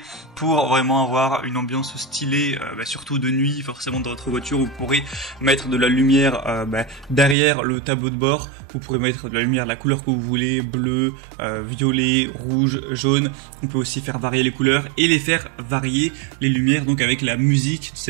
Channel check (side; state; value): left; drops out; at 7.4 s